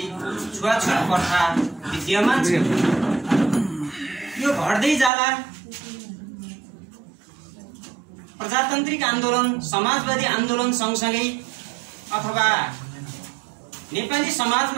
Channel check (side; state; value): left; drops out; at 5.1 s